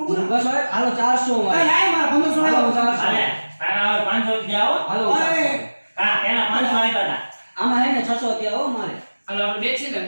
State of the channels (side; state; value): both; inverted; correlation -1.00